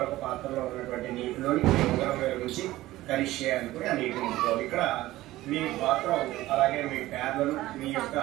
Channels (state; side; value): quieter; left; 16.6 dB